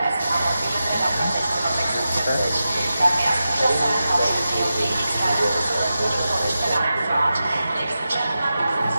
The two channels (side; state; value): both; inverted; correlation -0.91